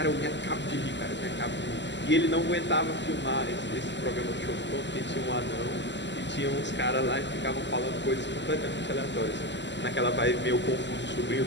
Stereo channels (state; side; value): late; right; 0.52 ms